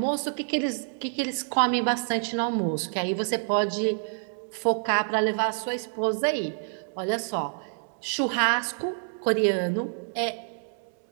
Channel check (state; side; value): silent; left; 60 dB below the other